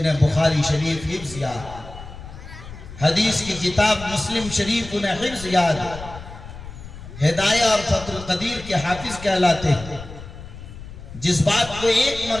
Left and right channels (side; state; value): left; noise; rumble, 14 dB below the sound